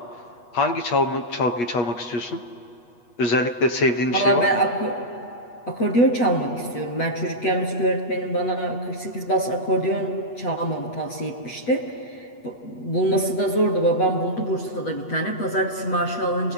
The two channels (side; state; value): right; late; 8.3 ms